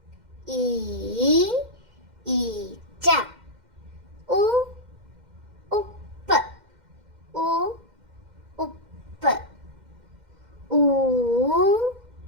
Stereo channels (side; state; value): left; late; 2.1 ms